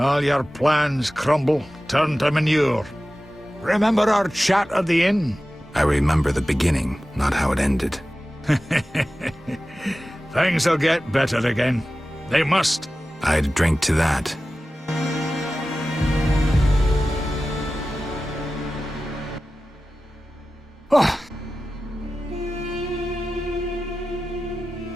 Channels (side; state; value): both; normal; correlation 0.95